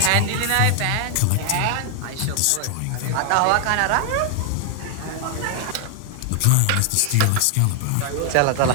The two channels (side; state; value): both; different; correlation 0.00